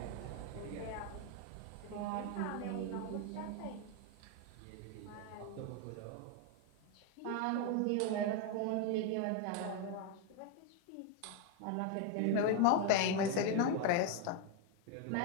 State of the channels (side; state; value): both; different; correlation 0.01